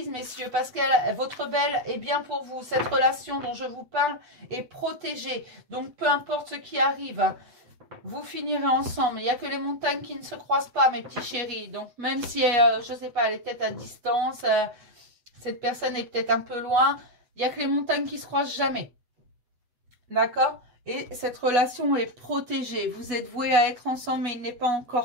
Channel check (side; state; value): left; late; 8.0 ms